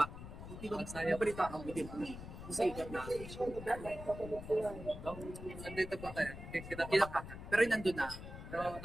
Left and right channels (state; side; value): noise; left; rumble, 11 dB below the sound